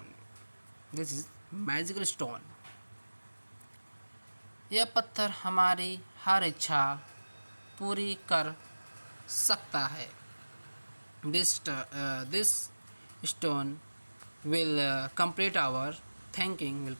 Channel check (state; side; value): inverted; both; correlation -1.00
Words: stone. यह पत्थर हमारी हर इच्छा पूरी कर सकता है। This stone will complete our thinking, will